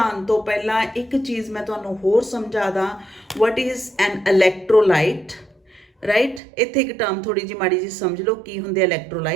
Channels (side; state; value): left; drops out; at 6.4 s